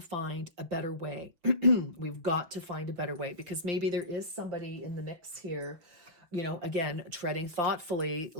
find a better way. We've got to find a better way, because maybe there is somebody in the mix here, again, treading thoughtfully.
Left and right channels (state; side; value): late; left; 6.0 ms